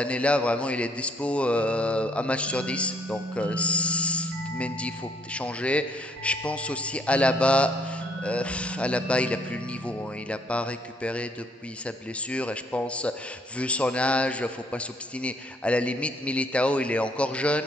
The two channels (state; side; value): normal; both; correlation 0.67